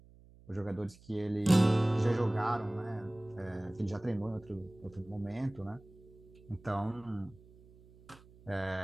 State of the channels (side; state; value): right; noise; hum, 24 dB below the sound